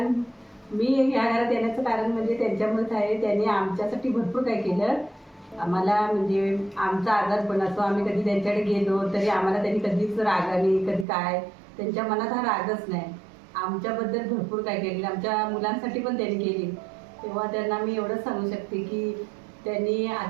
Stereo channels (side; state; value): left; drops out; at 11.1 s